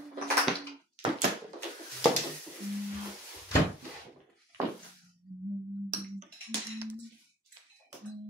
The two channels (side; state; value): both; normal; correlation 0.46